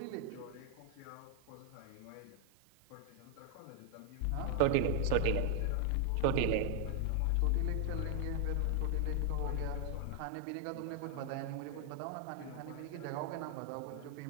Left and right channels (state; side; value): different; both; correlation 0.00